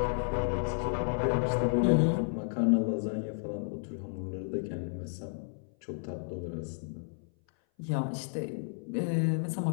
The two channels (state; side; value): silent; right; 56 dB below the other